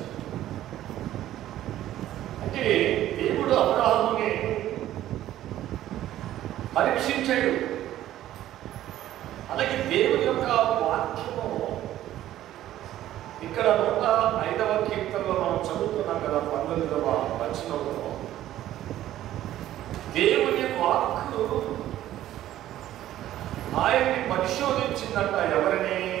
అంటే దేవుడు అబ్రాహాముని పరీక్షించాడు. అలాగే దేవుని యొక్క వాక్యము ఇక్కడ 105వ కీర్తనలో మనం చదువుతున్నాం కదా, 19వ వచనంలో దేవుని వాక్కు ఆయన్ని పరిశోధించిందంట. ఎవరిని?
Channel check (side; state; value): left; quieter; 13.2 dB